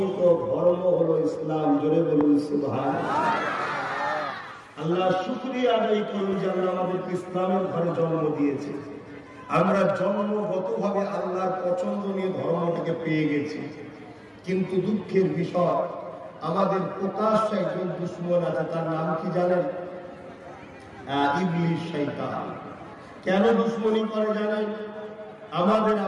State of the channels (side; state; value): both; identical; correlation 1.00